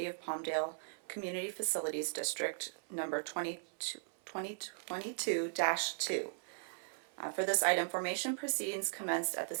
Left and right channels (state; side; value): silent; left; 52 dB below the other